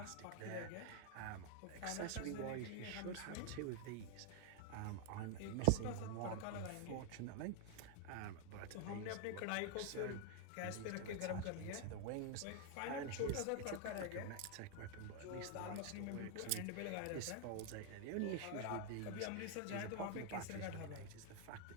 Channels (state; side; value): different; both; correlation 0.00